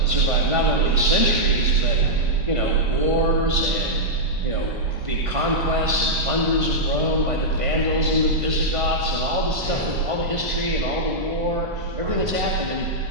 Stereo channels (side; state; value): left; late; 1.5 ms